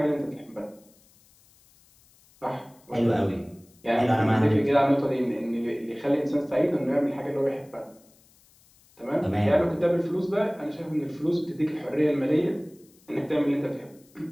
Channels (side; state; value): left; noise; hiss, 30 dB below the sound